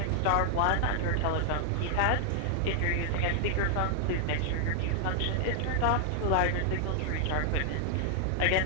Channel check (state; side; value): different; both; correlation 0.00